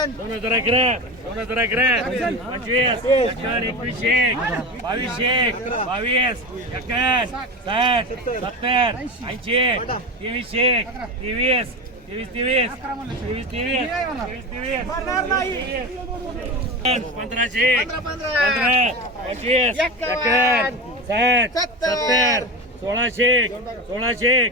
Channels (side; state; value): both; normal; correlation 0.24